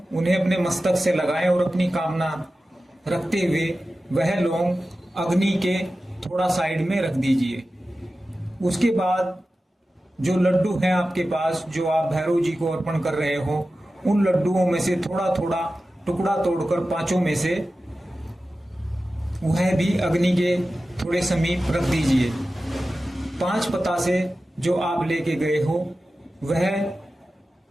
उन्हें अपने मस्तक से लगाएं और अपनी कामना रखते हुए वह लौंग अग्नि के थोड़ा साइड में रख दीजिए। उसके बाद जो लड्डू हैं आपके पास, जो आप भैरव जी को अर्पण कर रहे हो, उन लड्डुओं में से थोड़ा थोड़ा टुकड़ा तोड़कर 5 में से वह भी अग्नि के थोड़े समीप रख दीजिए। 5 पतासे जो आप लेके गए हो वह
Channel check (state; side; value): normal; both; correlation 0.94